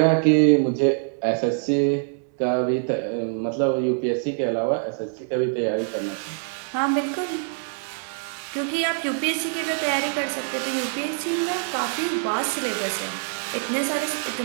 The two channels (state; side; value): silent; left; 62 dB below the other